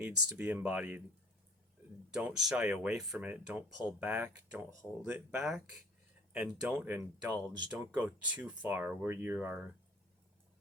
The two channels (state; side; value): normal; both; correlation 0.49